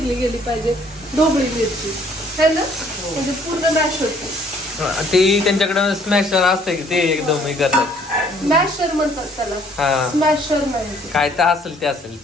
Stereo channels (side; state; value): both; normal; correlation 0.60